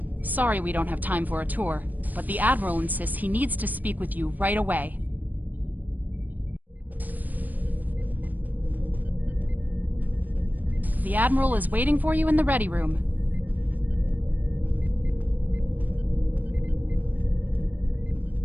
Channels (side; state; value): left; late; 0.084 ms